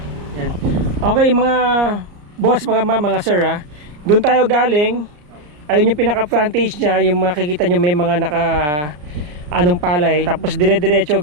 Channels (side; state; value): left; late; 34 ms